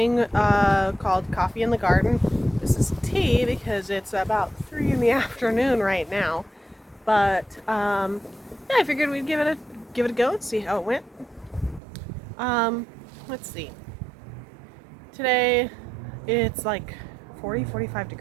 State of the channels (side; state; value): left; drops out; at 11.8 s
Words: called Coffee in the Garden. This is tea because it's about 3 in the afternoon right now. But yeah, I figured we'd give it a go and see how it went. Let's see. Today it's like 45